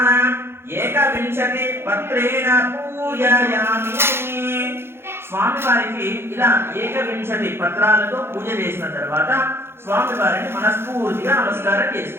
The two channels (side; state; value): left; late; 0.12 ms